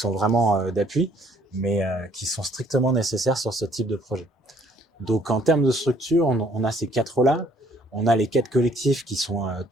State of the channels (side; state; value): both; normal; correlation 0.62